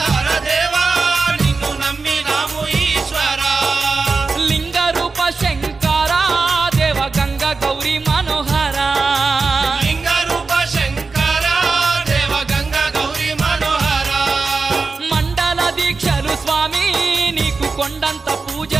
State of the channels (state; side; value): quieter; left; 4.2 dB